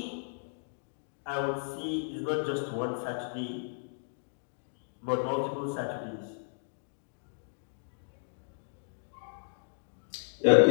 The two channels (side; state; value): right; silent; digital silence